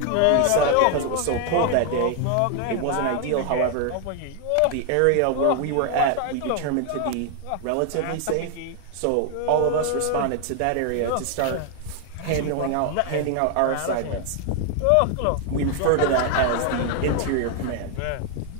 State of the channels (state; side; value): different; both; correlation 0.00